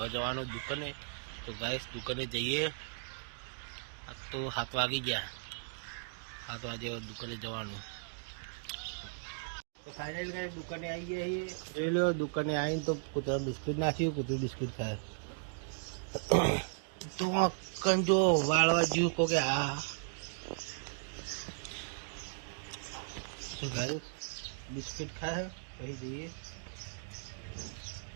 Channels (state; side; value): silent; left; digital silence